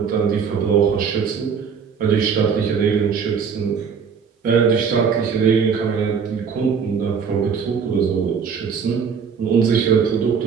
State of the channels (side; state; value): left; quieter; 6.4 dB